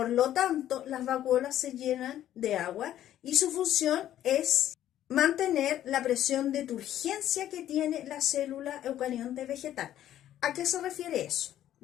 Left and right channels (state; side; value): quieter; right; 12.0 dB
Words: lo tanto, las vacuolas se llenan de agua y su función es mantener la presión de turgencia que tiene la célula eucarionte vegetal. ¿A qué se refiere eso?